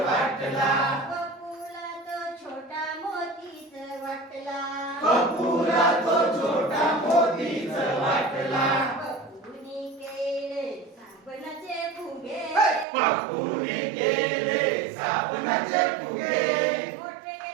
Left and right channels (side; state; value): left; drops out; at 12.9 s